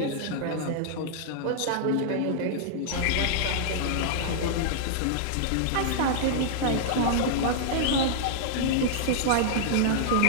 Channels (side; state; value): both; different; correlation -0.01